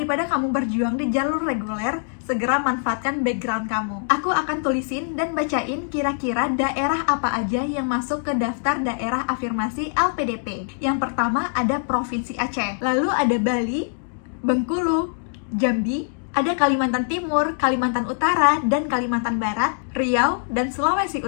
kamu berjuang di jalur reguler, segera manfaatkan background kamu. Aku akan tulisin dan bacain kira-kira daerah apa aja yang masuk ke daftar daerah afirmasi LPDP. Yang pertama ada Provinsi Aceh, lalu ada Bali, Bengkulu, Jambi, ada Kalimantan Timur, Kalimantan Utara, dan Kalimantan Barat, Riau, dan Sulawesi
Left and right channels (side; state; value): right; silent; digital silence